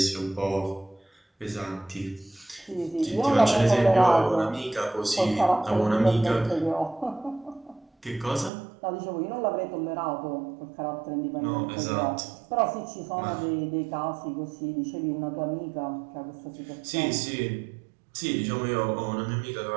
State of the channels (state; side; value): drops out; left; at 8.5 s